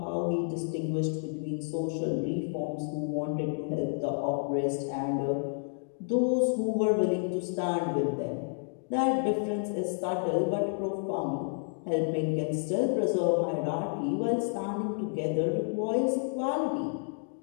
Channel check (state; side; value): silent; right; digital silence